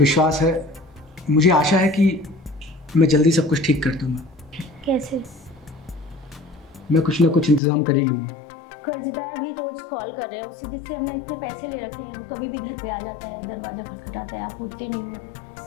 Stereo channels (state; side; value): drops out; right; at 7.6 s